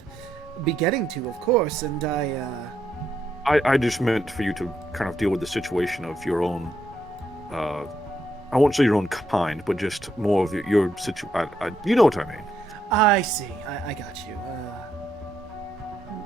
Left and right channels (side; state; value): both; normal; correlation 0.78